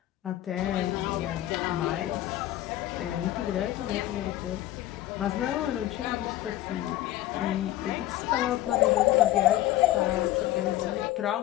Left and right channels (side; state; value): right; quieter; 14.6 dB